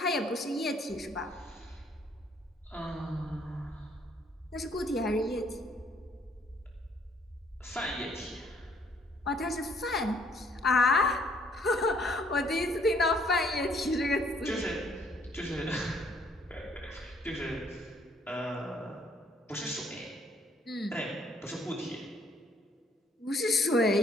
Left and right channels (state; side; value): normal; both; correlation 0.64